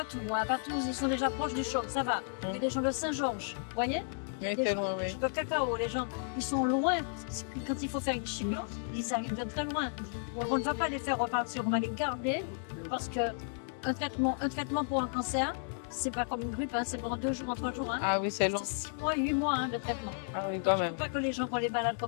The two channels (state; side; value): silent; right; digital silence